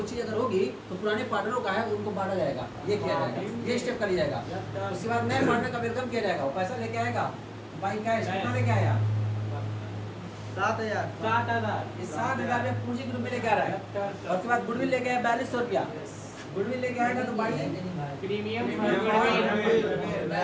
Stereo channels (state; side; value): identical; both; correlation 1.00